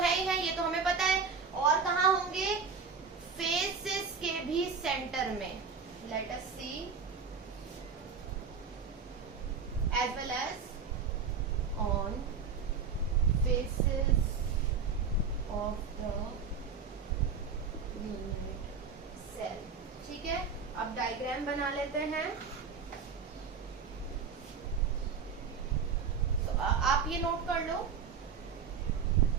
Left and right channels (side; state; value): left; quieter; 5.7 dB